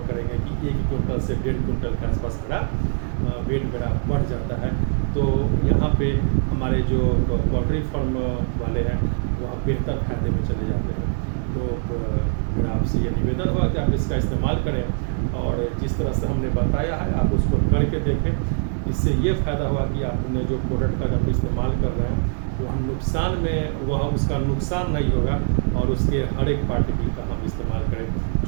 करेंगे कि 1 क्विंटल से 1.5 क्विंटल के आसपास मेरा वेट मेरा बढ़ जाता है। तो यहाँ पे हमारे जो पोल्ट्री फार्म वाले हैं वह बेहतर फायदे में चले जाते हैं। तो मेरा आपसे ये निवेदन होगा कि आप इसका इस्तेमाल करें, और जिस तरह से हमने बताया है आप उसको करके देखें। इससे ये फ़ायदा हुआ कि आपने जो प्रोडक्ट का जब इस्तेमाल कर रहे हैं वह उसका नुकसान नहीं होगा, और उसके हर एक पार्टिकल का हम इस्तेमाल करें।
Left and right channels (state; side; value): silent; left; 63 dB below the other